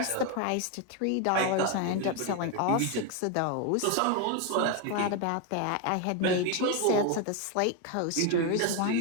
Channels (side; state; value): both; different; correlation 0.01